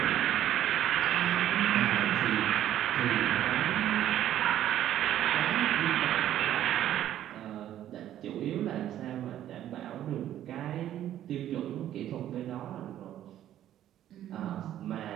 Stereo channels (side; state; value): left; quieter; 11.8 dB